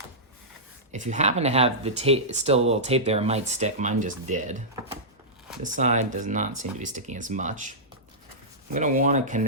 if you happen to have the tape, still a little tape there, it might stick. Mine just did. This side does not seem to be sticking as much. I'm gonna wanna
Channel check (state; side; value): normal; both; correlation -0.15